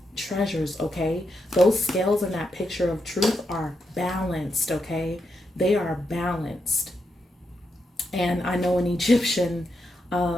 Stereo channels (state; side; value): normal; both; correlation 0.84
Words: treasures, okay? Those scales in that picture of truth are balanced, okay? They are balanced. And I know in Egyptian,